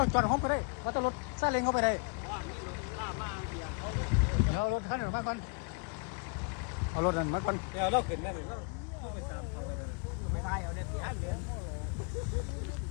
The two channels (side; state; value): right; quieter; 34.3 dB